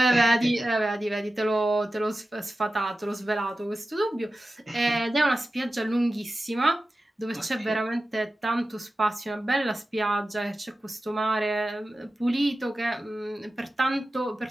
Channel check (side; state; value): both; normal; correlation 0.94